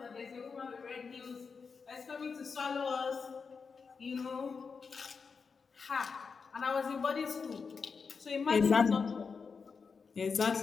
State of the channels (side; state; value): right; quieter; 5.3 dB